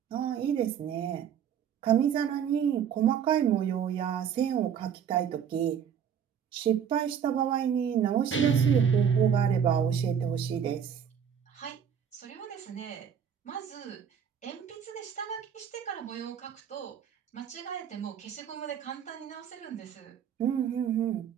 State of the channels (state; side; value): quieter; left; 8.1 dB